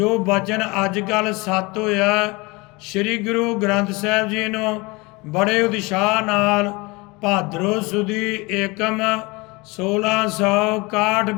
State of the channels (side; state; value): right; quieter; 25.1 dB